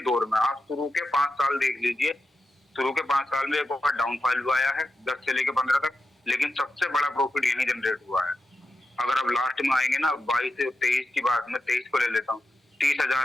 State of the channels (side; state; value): both; normal; correlation 0.90